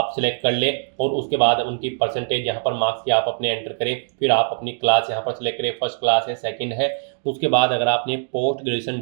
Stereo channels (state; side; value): silent; left; digital silence